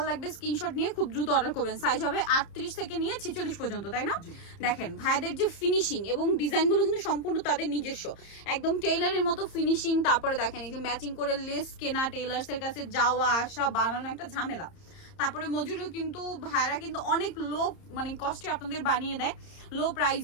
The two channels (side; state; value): right; late; 30 ms